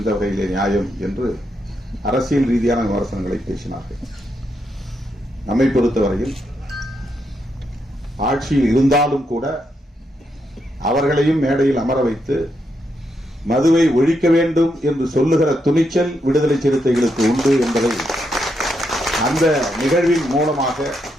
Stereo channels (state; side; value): normal; both; correlation 0.81